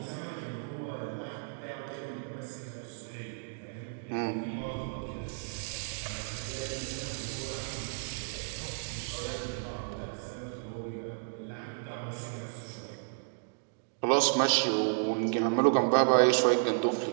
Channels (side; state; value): left; silent; digital silence